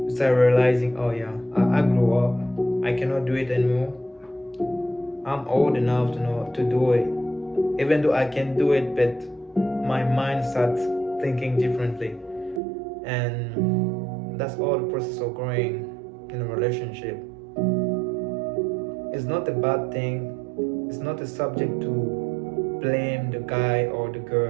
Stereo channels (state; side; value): drops out; left; at 12.6 s